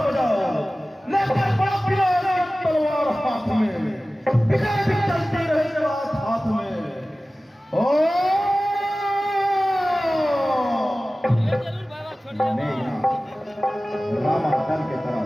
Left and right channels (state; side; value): normal; both; correlation 0.97